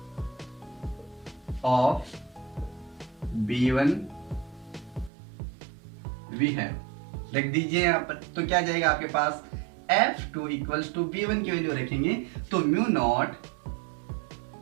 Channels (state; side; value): drops out; left; at 5.1 s